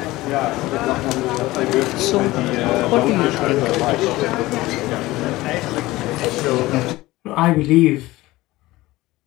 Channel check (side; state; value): right; quieter; 18.6 dB